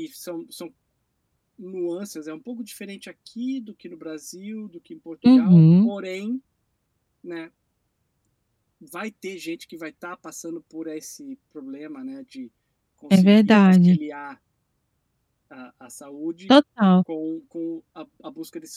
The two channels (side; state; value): both; identical; correlation 1.00